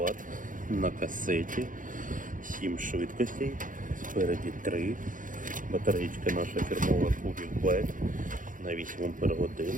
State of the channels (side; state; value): left; late; 0.38 ms